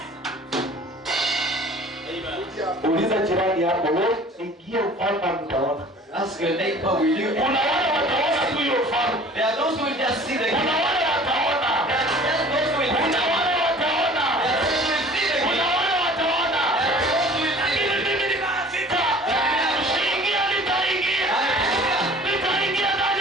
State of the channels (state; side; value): normal; both; correlation 0.47